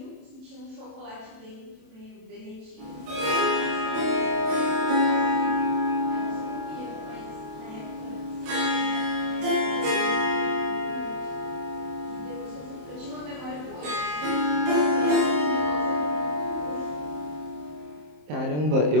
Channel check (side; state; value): left; late; 27 ms